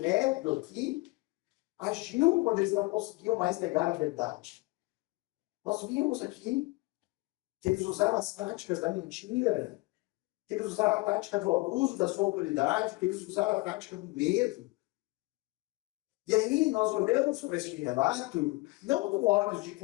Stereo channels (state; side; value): quieter; right; 23.5 dB